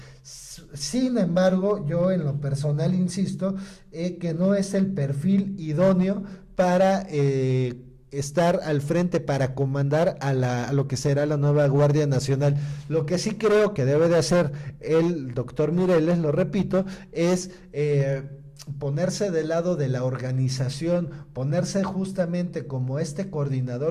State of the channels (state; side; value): identical; both; correlation 1.00